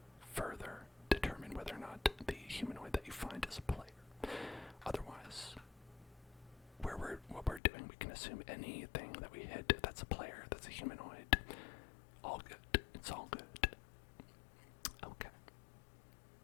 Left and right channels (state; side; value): drops out; right; at 7.6 s